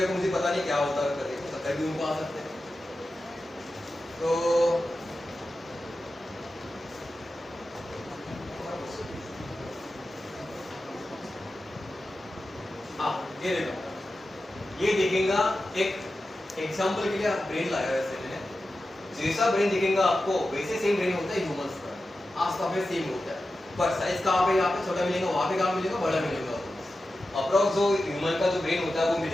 को मुझे पता नहीं क्या होता है, करके तो कभी उनको आ सकते हैं। तो हाँ, ये देखो, ये दिखेगा एक एग्जांपल के लिए ब्रेन लाया है वैसे मैंने। जैसा ब्रेन दिखेगा आपको वैसे सेम ब्रेन होता है ह्यूमंस का, आसपास में सेम होता है। पर साइज कहाँ पे? यहाँ पे छोटा मिलेगा, वहाँ पे कहाँ मिलेगा? बड़ा मिलेगा। अप्रॉक्स जो ह्यूमन का जो ब्रेन होता है वो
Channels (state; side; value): normal; both; correlation 0.92